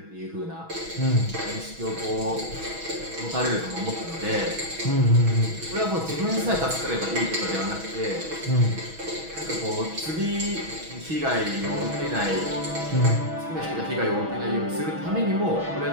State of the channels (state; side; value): late; left; 6.2 ms